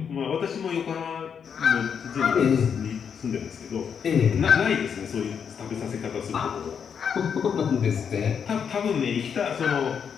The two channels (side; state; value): right; quieter; 7.2 dB